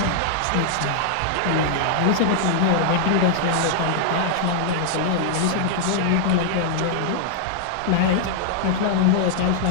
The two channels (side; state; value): both; different; correlation -0.01